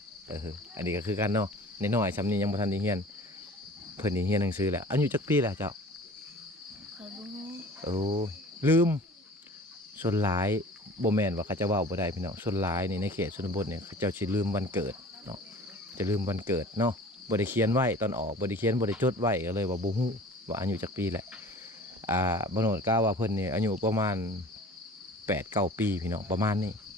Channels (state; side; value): normal; both; correlation 0.45